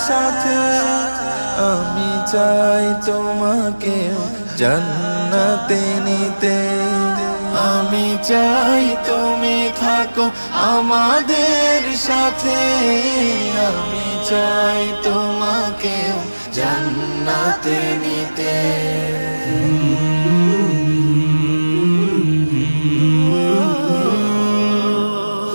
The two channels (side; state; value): both; inverted; correlation -1.00